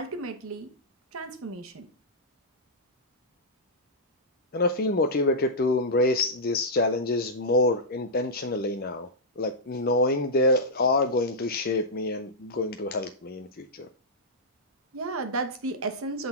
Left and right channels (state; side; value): normal; both; correlation -0.11